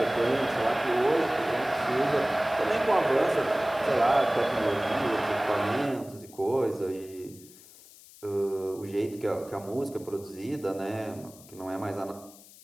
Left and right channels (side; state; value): left; noise; hiss, 22 dB below the sound